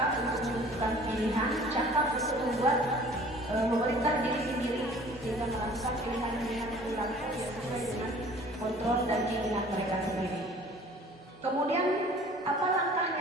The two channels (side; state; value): both; normal; correlation 0.49